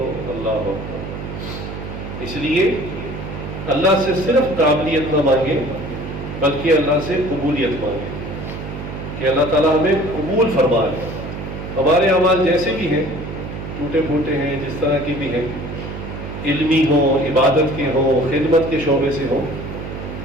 اللہ اکبر. اس لیے اللہ سے صرف قابلیت نہ مانگے بلکہ اللہ سے قبولیت مانگے کہ اللہ تعالیٰ ہمیں قبول فرما لے. ہمارے اعمال جیسے بھی ہیں، ٹوٹے پھوٹے ہیں، جس طرح کی بھی ہیں، علمی ہوں، عبادت کے ہوں، خدمت کے شعبے سے ہوں،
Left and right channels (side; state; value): right; noise; hum, 8 dB below the sound